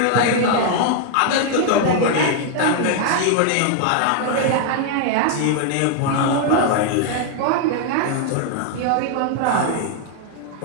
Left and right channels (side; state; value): both; different; correlation 0.00